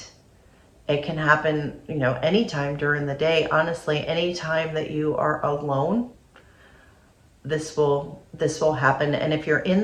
It can happen, you know, anytime during the day. Honestly, anytime that you are alone, this will happen. And if you're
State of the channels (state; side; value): identical; both; correlation 1.00